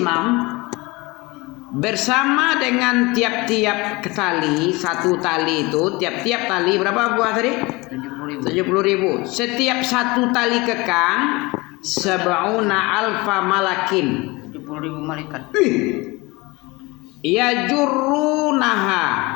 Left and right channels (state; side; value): quieter; right; 23.8 dB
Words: bersama dengan tiap-tiap tali, satu tali itu, tiap-tiap tali berapa buah tadi? 70.000. Setiap satu tali kekang sab'una alfa malakin. 70.000 malaikat. Ya jurunaha,